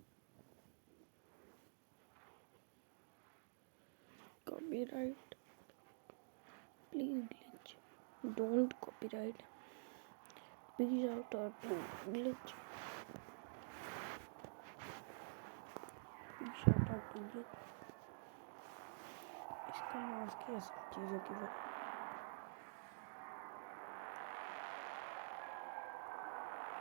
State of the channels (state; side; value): silent; left; digital silence